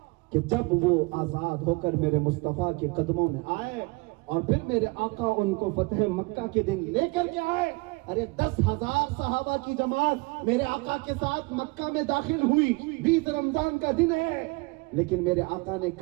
کہ جب وہ آزاد ہو کر میرے مصطفیٰ کے قدموں میں آئے اور پھر میرے آقا ان کو فتح مکہ کے دن لے کر کے آئے، ارے 10,000 صحابہ کی جماعت میرے آقا کے ساتھ مکہ میں داخل ہوئی، 20 رمضان کا دن ہے، لیکن میرے آقا نے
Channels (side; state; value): left; quieter; 27.0 dB